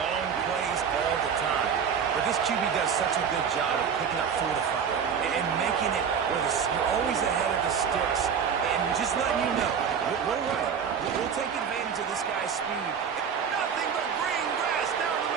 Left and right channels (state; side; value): quieter; left; 7.1 dB